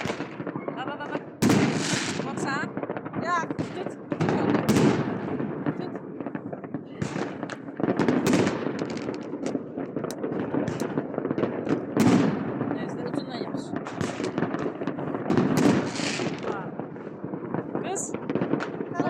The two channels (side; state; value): both; identical; correlation 1.00